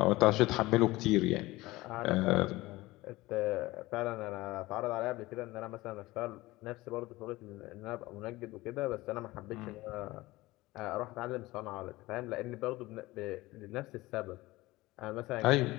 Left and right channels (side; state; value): right; quieter; 19.5 dB